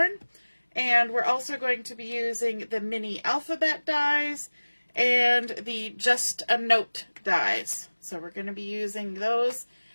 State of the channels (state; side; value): inverted; both; correlation -1.00